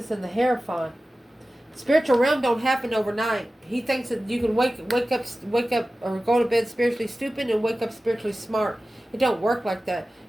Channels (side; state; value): both; normal; correlation 0.96